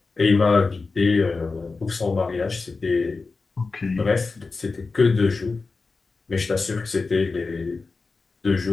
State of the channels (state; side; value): quieter; right; 4.1 dB